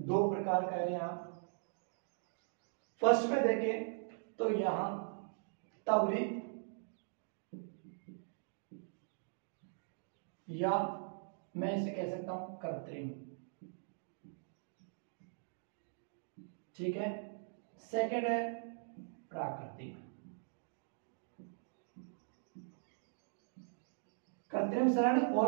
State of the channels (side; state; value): left; silent; digital silence